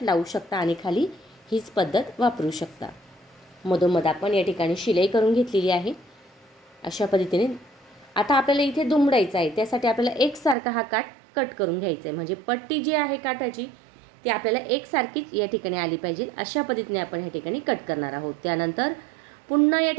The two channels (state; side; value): drops out; left; at 10.6 s